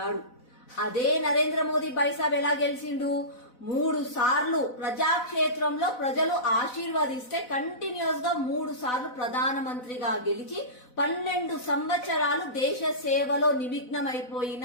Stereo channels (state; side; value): late; right; 4.0 ms